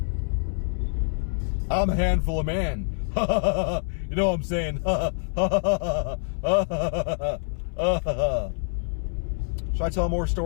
I'm a handful of man. You know what I'm saying? Should I tell more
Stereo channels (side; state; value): right; silent; 61 dB below the other